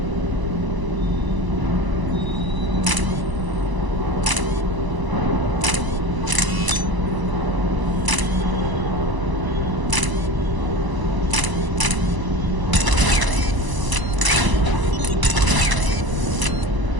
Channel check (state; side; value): late; left; 1.0 ms